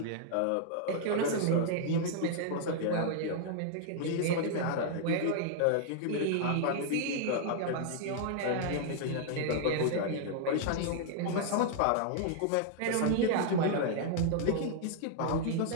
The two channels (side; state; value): both; different; correlation -0.01